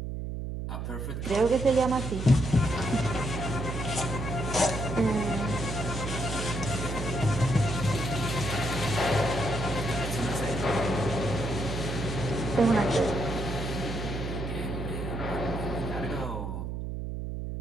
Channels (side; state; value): right; noise; hum, 4 dB below the sound